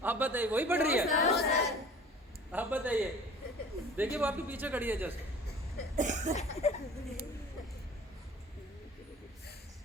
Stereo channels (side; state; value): both; normal; correlation 0.45